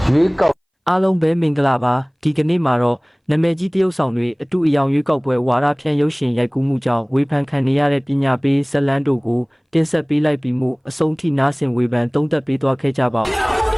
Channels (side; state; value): both; identical; correlation 1.00